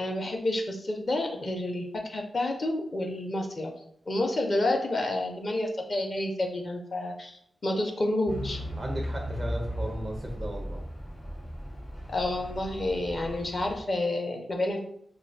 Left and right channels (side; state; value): both; normal; correlation 0.90